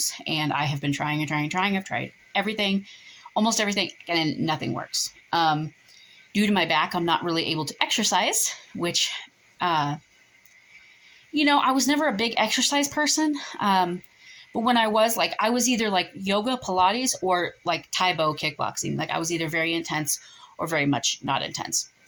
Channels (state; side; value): identical; both; correlation 1.00